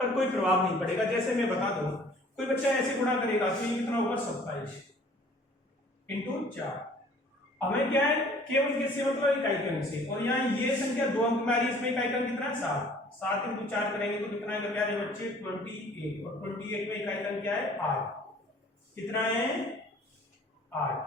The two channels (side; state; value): both; normal; correlation 0.53